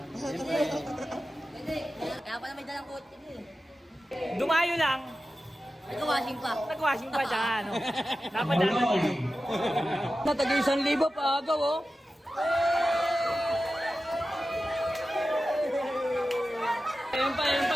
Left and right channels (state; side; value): normal; both; correlation 0.93